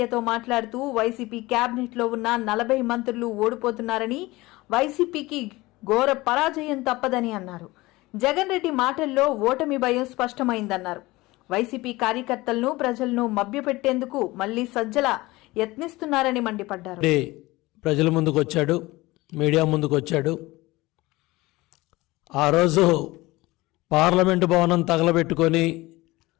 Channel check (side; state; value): right; quieter; 20.4 dB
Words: మాట్లాడుతూ వైసీపీ కేబినెట్ లో ఉన్న 40 మంత్రులు ఓడిపోతున్నారని, వైసీపీకి ఘోర పరాజయం తప్పదని అన్నారు. జగన్ రెడ్డి మాటల్లో ఓటమి భయం స్పష్టమైందన్నారు. వైసీపీ కార్యకర్తలను, ప్రజలను మభ్యపెట్టేందుకు మళ్లీ సజ్జల యత్నిస్తున్నారని మండిపడ్డారు. ప్రజల ముందుకు వచ్చాడు, మీడియా ముందుకు వచ్చాడు. ఆ రోజు పార్లమెంటు భవనం తగలబెట్టుకొని